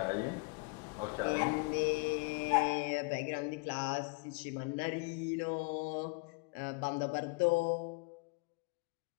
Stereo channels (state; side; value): quieter; right; 31.5 dB